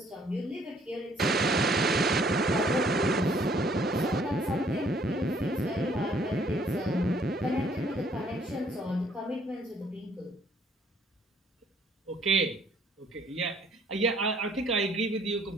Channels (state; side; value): normal; both; correlation 0.63